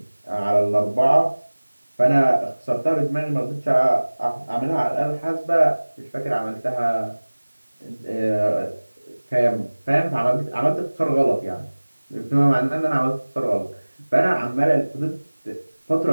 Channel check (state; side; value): inverted; both; correlation -1.00